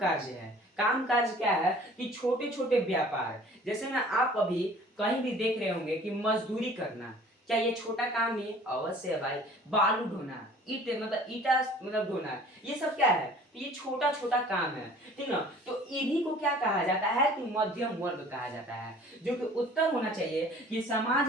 है, काम कार्य क्या है कि छोटे छोटे व्यापार, जैसे ना आप अभी कहीं भी देख रहे होंगे कि मजदूरी करना, क्या ये छोटा काम ही है, अवश्य है भाई। बालू ढोना, ईट मतलब ईटा मतलब ढोना, ये सब क्या है तो ये छोटा छोटा काम है, ठीक ना। तो इन्हीं को क्या कहा जाता है कि मध्यम वर्ग कहा जाता है, जो कि उत्तर होना चाहिए कि समाज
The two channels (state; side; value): normal; both; correlation 0.50